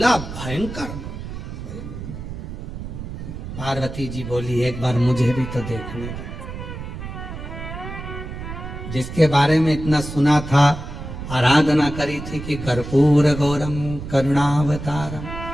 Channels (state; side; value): noise; right; rumble, 9 dB below the sound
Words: भयंकर। पार्वती जी बोली एक बार मुझे भी तो देखने दो। जिसके बारे में इतना सुना था, आराधना करी थी कि कर्पूर गौरम करुणावतारम